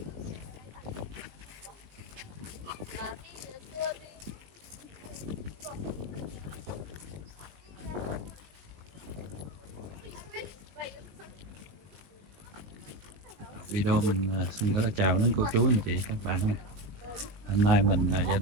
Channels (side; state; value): left; late; 19 ms